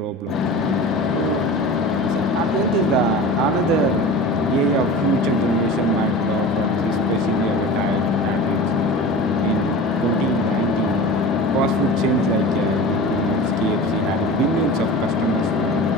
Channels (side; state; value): both; normal; correlation 0.35